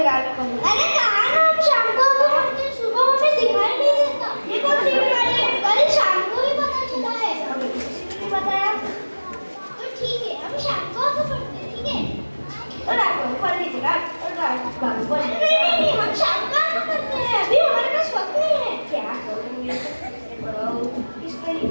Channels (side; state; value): both; inverted; correlation -1.00